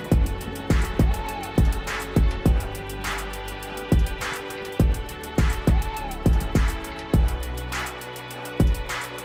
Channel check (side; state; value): both; identical; correlation 1.00